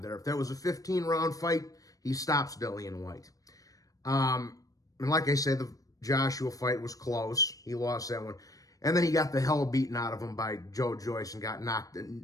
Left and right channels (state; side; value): late; right; 0.17 ms